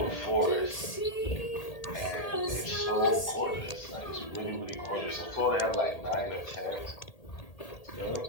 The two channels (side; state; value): right; late; 1.8 ms